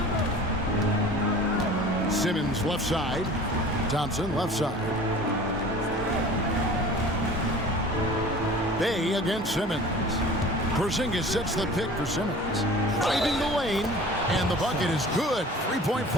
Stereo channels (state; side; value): normal; both; correlation 0.42